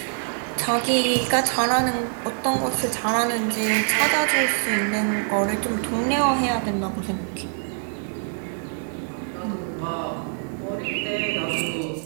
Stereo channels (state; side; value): silent; left; digital silence